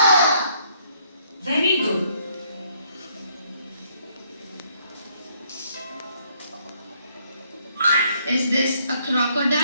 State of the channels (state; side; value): inverted; both; correlation -0.68